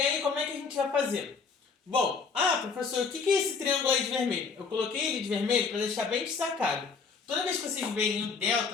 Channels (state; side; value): quieter; right; 5.2 dB